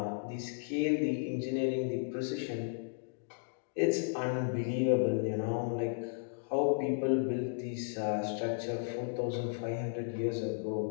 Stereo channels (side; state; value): right; silent; digital silence